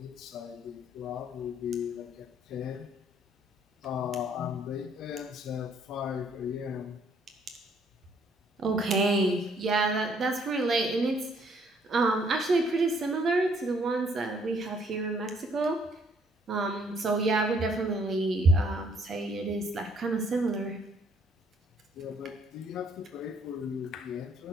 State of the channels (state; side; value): normal; both; correlation 0.65